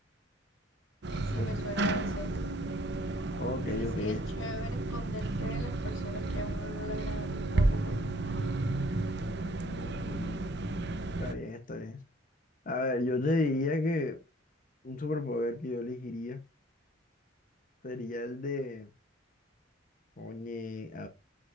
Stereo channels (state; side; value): normal; both; correlation 0.59